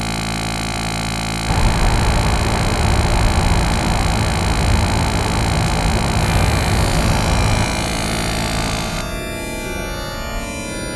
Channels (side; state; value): both; identical; correlation 1.00